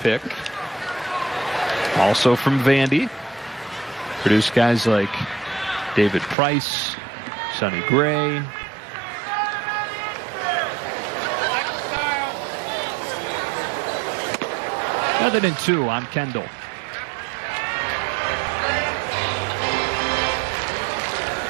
Also from Vandy. Produced guys like David Price, Sonny Gray. Other than 2 on Kendall.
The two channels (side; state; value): left; drops out; at 6.4 s